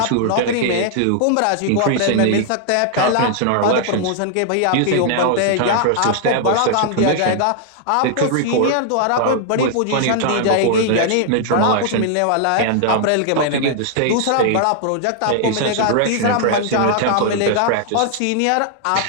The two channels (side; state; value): both; different; correlation -0.01